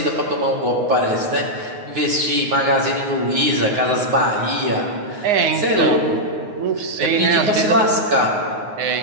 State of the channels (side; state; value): left; late; 9.6 ms